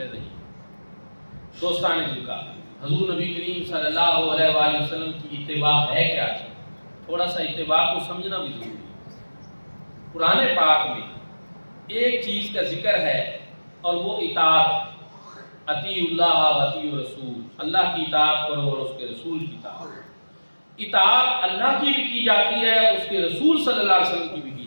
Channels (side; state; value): both; inverted; correlation -1.00